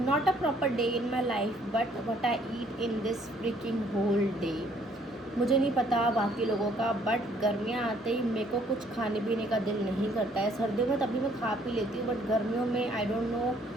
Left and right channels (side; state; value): both; normal; correlation 0.63